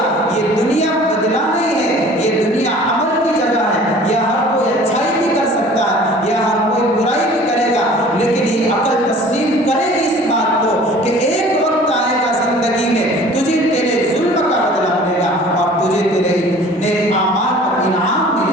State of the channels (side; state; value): both; normal; correlation 0.47